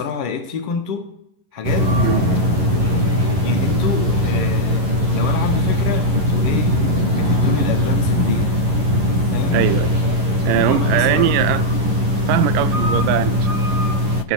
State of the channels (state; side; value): late; left; 11 ms